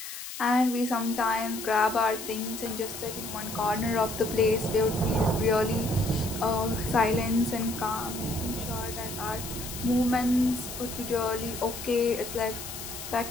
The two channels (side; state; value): left; noise; hiss, 9 dB below the sound